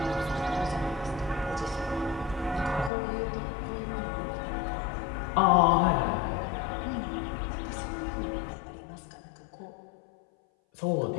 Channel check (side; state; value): right; drops out; at 2.9 s